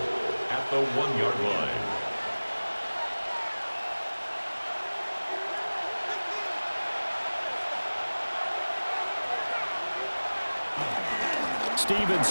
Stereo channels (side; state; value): both; inverted; correlation -1.00